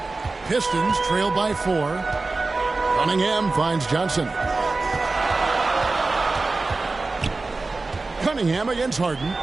Pistons trail by 4. Cunningham finds Johnson. Cunningham against Harden.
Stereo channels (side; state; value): left; quieter; 3.6 dB